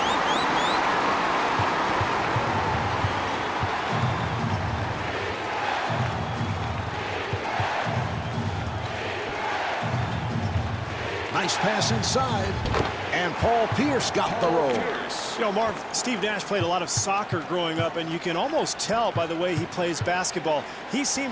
Nice pass inside. And Paul Pierce got the roll. You know, Marv, Steve Nash played a lot of soccer growing up, and you can almost tell by the way he plays basketball. He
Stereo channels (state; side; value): identical; both; correlation 1.00